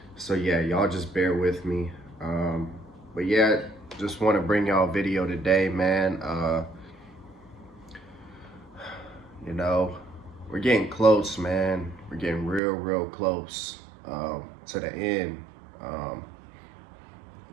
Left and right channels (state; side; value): drops out; left; at 12.6 s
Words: So yeah, y'all just bear with me. But yeah, just want to bring y'all a video today, man. We're getting close, man. We're getting real close to the end. A